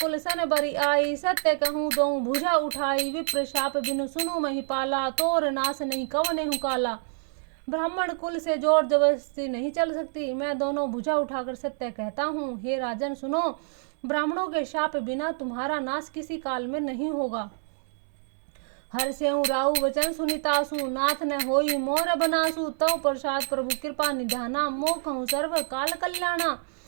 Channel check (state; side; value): silent; left; 60 dB below the other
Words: सन बरी आई, सत्य कहूँ दो भुजा उठाई, विप्र शाप बिनु सुनु महिपाला, तोर नाश नहीं कवने हूँ काला। ब्राह्मण कुल से जोर जबरदस्ती नहीं चल सकती, मैं दोनों भुजा उठाकर सत्य कहता हूँ। हे राजन सुनो, ब्राह्मणों के शाप बिना तुम्हारा नाश किसी काल में नहीं होगा। हर्षेऊ राहु वचन सुनितासु, नाथ न होई मोर बनासु, तव प्रसाद प्रभु कृपा निधाना, मोखहु सर्व काल कल्याणा।